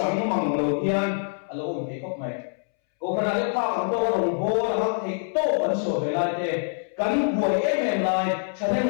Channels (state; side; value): silent; right; 62 dB below the other